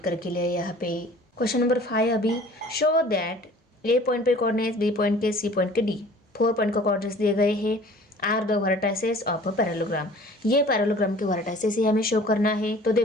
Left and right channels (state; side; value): normal; both; correlation 0.48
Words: लिया। यहाँ पे क्वेश्चन नंबर 5, अभी शो दैट A पॉइंट पे कोऑर्डिनेट्स, B पॉइंट के, C पॉइंट के, D 4 पॉइंट को कोऑर्डिनेट्स दिए गए हैं, are the vertices of a parallelogram. ये पैरेललोग्राम के वर्टाइसेस ही हमें शो करना है। तो